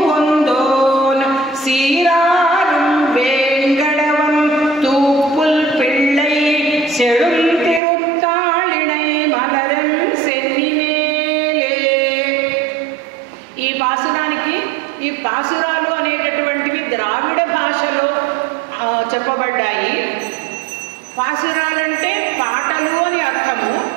ஒந்தோன் சீராரும் ఈ పాసురాలు అనేటటువంటివి ద్రావిడ భాషలో చెప్పబడ్డాయి. పాసురాలంటే పాటలు అని అర్థము.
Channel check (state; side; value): drops out; left; at 7.8 s